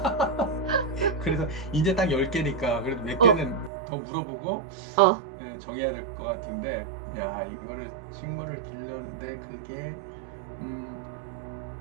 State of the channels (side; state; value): left; drops out; at 3.7 s